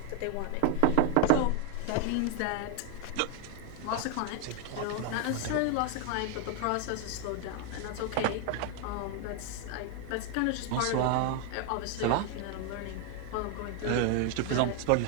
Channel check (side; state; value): both; different; correlation 0.01